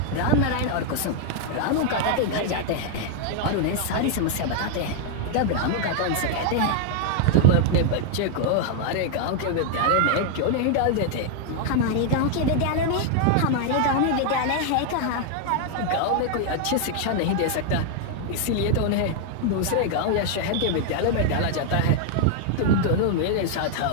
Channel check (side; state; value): both; different; correlation 0.00